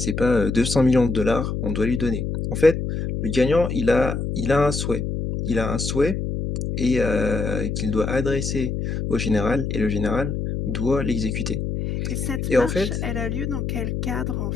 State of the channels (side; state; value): left; noise; hum, 2 dB below the sound